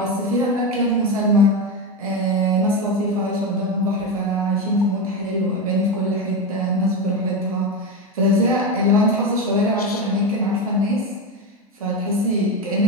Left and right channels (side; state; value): both; normal; correlation 0.16